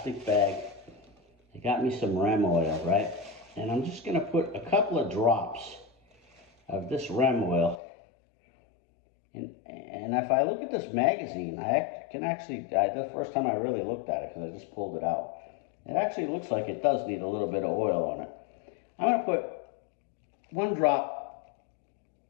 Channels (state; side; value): drops out; right; at 7.8 s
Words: bag. I got me some ram oil, right? And I'm just going to put a couple of drops of this ram oil. And if I look at this magazine, I can actually, the first time I really looked at it, because I just pulled it out, it actually looks like it does need a little bit of oil on it. I'm going to put one drop,